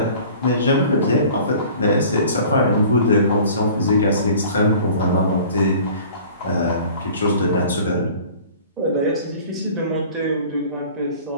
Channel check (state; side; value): inverted; both; correlation -0.46